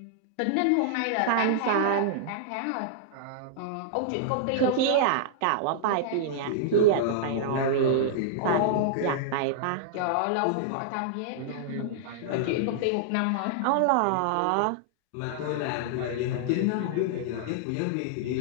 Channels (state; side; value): different; both; correlation -0.02